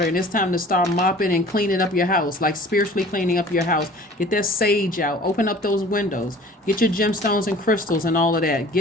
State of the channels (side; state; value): both; normal; correlation 0.47